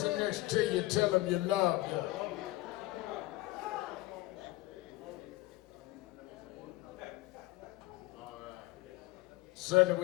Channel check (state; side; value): quieter; right; 19.4 dB